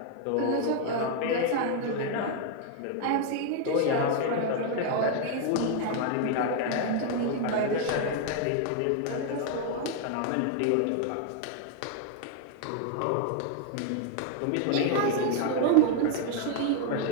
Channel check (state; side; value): different; both; correlation 0.00